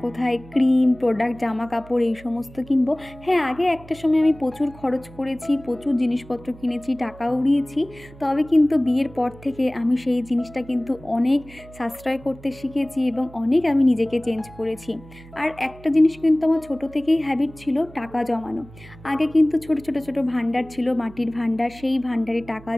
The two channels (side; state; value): right; noise; hum, 20 dB below the sound